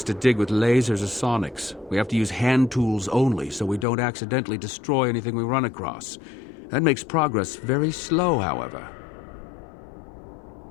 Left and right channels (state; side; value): drops out; right; at 3.9 s